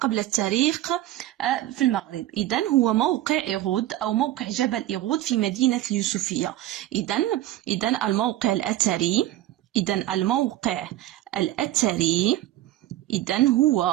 التاريخ في المغرب. إذا هو موقع إيغود أو موقع جبل إيغود في مدينة اليوسفية. إذا الموقع الأثري، إذا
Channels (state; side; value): quieter; left; 14.4 dB